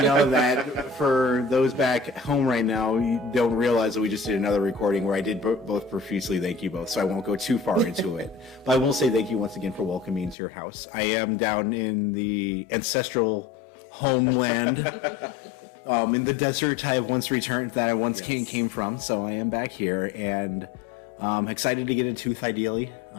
know that for those back home right now, you don't realize that we just did another recording where I did both profusely thank you both, so I won't go too far into it. But I will say thank you once again for welcoming me into your house. I am down in the ancestral homeland, in the desert I have once returned, that I once came from, so I am back here, and excited to get a tooth, ideally.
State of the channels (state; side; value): drops out; right; at 10.4 s